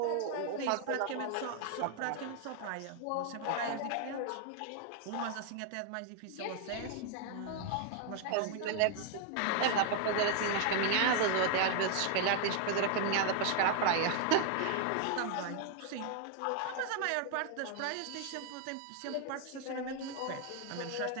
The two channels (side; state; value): both; different; correlation 0.00